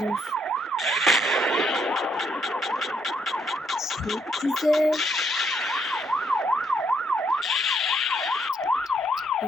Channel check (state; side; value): normal; both; correlation 0.73